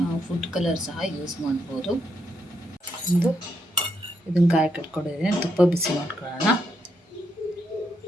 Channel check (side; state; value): both; normal; correlation 0.78